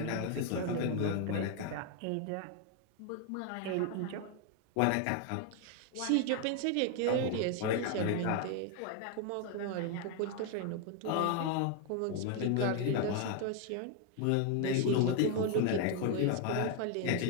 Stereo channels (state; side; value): different; both; correlation 0.01